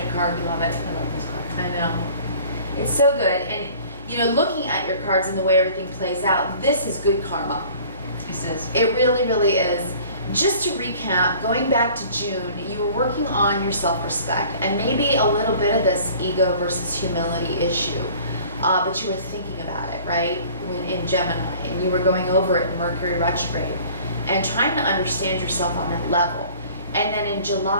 card. We love it. I love this card. I know. It's so good. And, you know, looking at your cards and the way everything plays out, this is good karma. This is. It really, really is. Just to recap, going back to June, you were working on your self-respect and maybe a little bit of this ego versus humility issue, but you were thinking about it, right, in Gemini, and you were going over it in Mercury retrograde and trying to understand yourself on that level. And then in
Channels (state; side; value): inverted; both; correlation -0.49